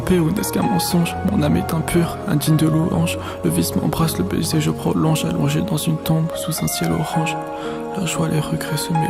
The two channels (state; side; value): identical; both; correlation 1.00